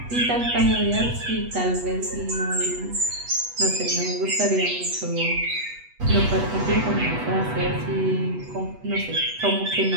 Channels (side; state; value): left; late; 8.2 ms